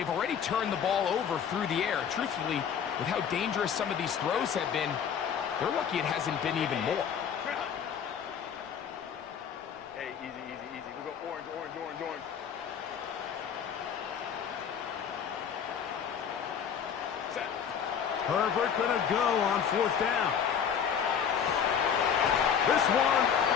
already turned the ball over through the air. Truthfully, with how dangerous some of these throws have been, they're lucky it hasn't been even more. Hey, easy, easy, easy. We'll go orange, orange, orange, orange. Set. Herbert going to go on 4th down. This one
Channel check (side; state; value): right; quieter; 7.8 dB